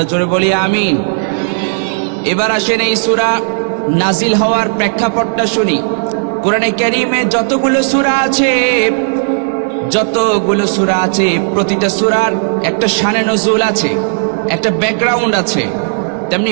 জোরে বলি আমিন। এবার আসেন এই সূরা নাজিল হওয়ার প্রেক্ষাপটটা শুনি। কোরআনে কারীমে যতগুলো সূরা আছে, প্রতিটা সূরার একটা শানে নুজুল আছে, একটা ব্যাকগ্রাউন্ড আছে। তেমনি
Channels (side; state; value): left; silent; digital silence